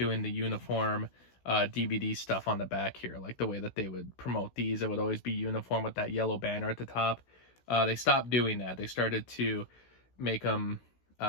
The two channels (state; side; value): late; right; 16 ms